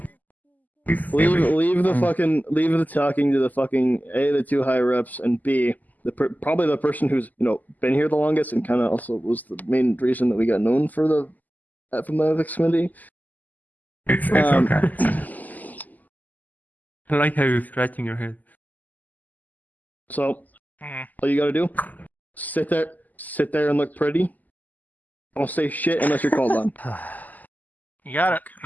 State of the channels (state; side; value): late; right; 0.082 ms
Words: Leave the talking to the fucking A, the 2 higher ups, and B, probably the person who's been here the longest and kind of also was the main reason that we got known for from the ethics committee. It's okay. I like how you're scratching your head. So, all you gotta do, sit there and look pretty. Don't say shit unless you're called on. You got it.